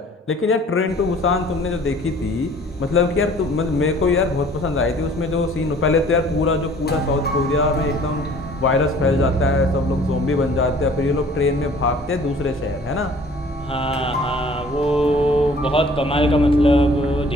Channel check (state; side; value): normal; both; correlation 0.52